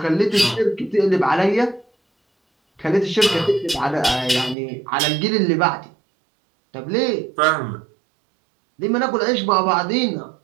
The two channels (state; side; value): drops out; left; at 4.5 s